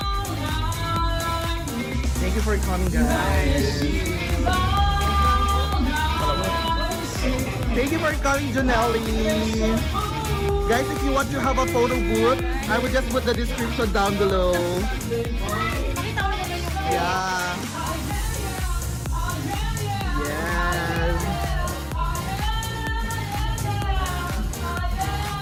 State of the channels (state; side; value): identical; both; correlation 1.00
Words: Thank you for coming, guys. Thank you for coming, Janelle. Guys, if you want to have a photo booth, I will just put the description down below. Yeah. Yes.